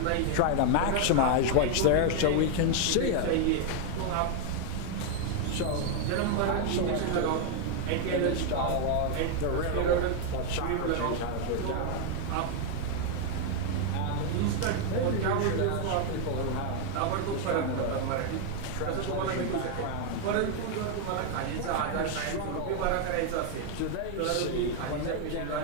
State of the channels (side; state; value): both; different; correlation 0.00